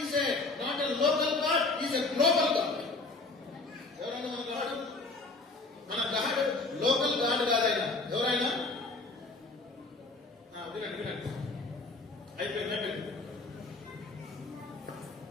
is a not a local God, is a global God. ఎవరైనా మన గాడ్, మన గాడ్ లోకల్ గాడ్ కాదైనా ఎవరైనా వినండి వినండి అయిపోయింది.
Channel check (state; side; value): quieter; right; 3.4 dB